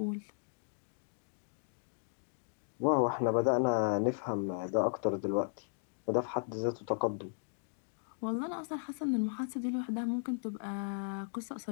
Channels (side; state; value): right; silent; digital silence